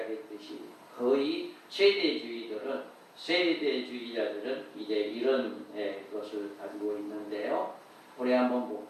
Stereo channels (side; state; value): both; identical; correlation 1.00